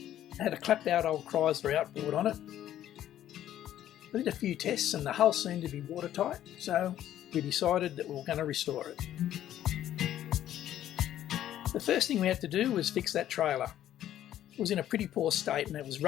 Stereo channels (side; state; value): right; quieter; 11.9 dB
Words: had a clapped out old Chrysler outboard on it. We did a few tests and the hull seemed to be watertight, so we decided that we were going to restore it. The first thing we had to do was fix that trailer. It was in a pretty poor state and it was